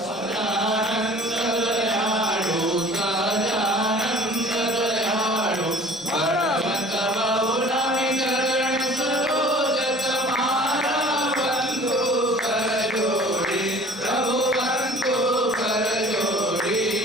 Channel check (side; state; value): both; normal; correlation 0.47